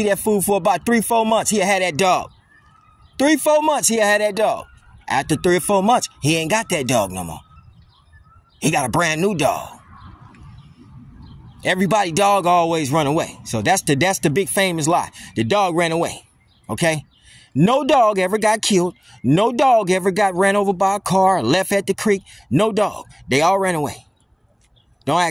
that food for about 3-4 months, he'll have that dog. 3-4 months, he'll have that dog. After 3 or 4 months, he ain't got that dog no more. He got a brand new dog. Everybody dog always run away. So that's the big famous lie. The dog ran away. Okay? No dog ever got killed. No dog ever got ran over by a car, left at the creek. No dog. They all ran away. Don't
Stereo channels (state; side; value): identical; both; correlation 1.00